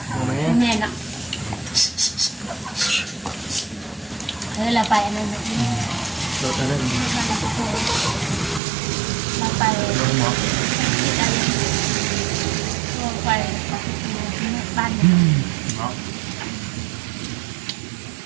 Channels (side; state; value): left; drops out; at 8.6 s